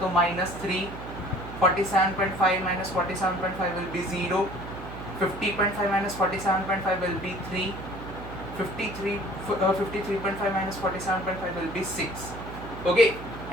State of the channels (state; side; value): noise; right; hum, 11 dB below the sound